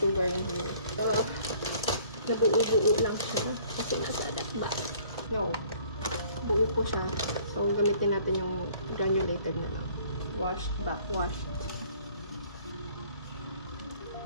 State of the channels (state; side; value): inverted; both; correlation -0.56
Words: yung here. So, nabuo-buo lang siya. Kasi nasa ba? No. Buo po siya. So, gamitin natin yung granulated na lang. Washed, backwashed.